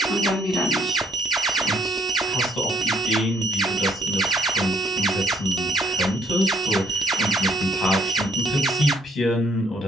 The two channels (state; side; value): normal; both; correlation 0.64